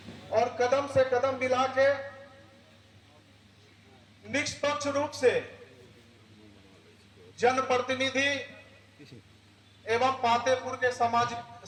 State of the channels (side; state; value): both; identical; correlation 1.00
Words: और कदम से कदम मिला के निष्पक्ष रूप से जनप्रतिनिधि एवं पातेपुर के